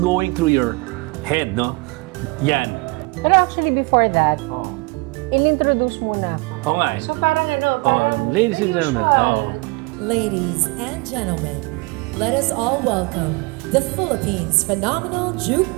going through your head, no? Yan. Pero actually before that, in-introduce muna ako. Oo nga eh. So parang ano, Oh, ladies and gentlemen. Oh. Ladies and gentlemen, let us all welcome the Philippines' phenomenal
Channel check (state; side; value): quieter; left; 25.8 dB